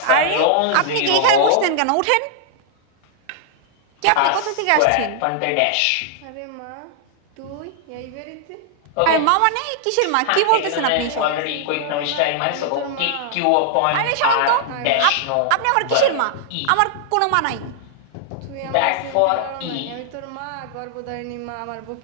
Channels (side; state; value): both; different; correlation -0.01